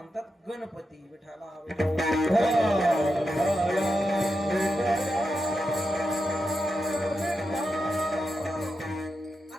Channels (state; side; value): normal; both; correlation 0.87